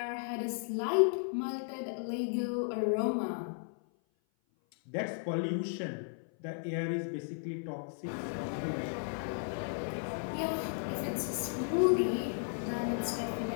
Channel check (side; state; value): right; silent; 55 dB below the other